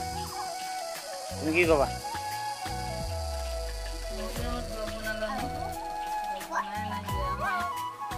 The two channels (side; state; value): both; identical; correlation 1.00